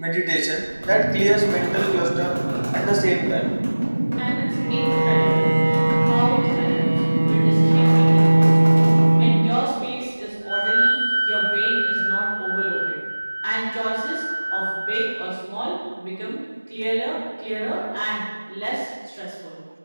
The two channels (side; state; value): both; inverted; correlation -1.00